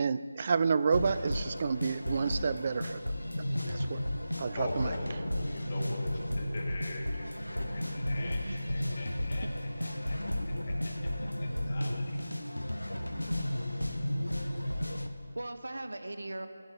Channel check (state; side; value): inverted; both; correlation -0.93